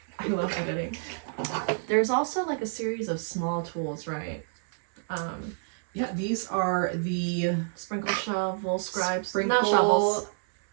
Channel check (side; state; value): left; silent; 59 dB below the other